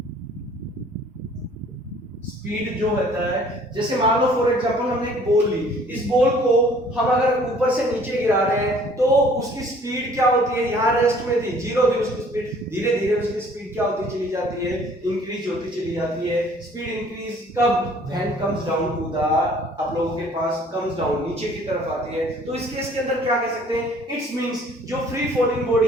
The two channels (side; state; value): both; normal; correlation 0.55